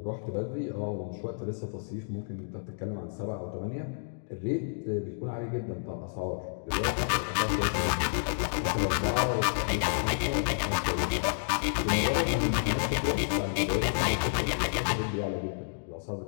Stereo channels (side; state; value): right; silent; digital silence